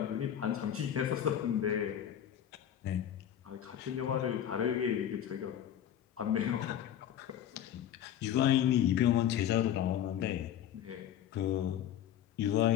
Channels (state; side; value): quieter; right; 10.3 dB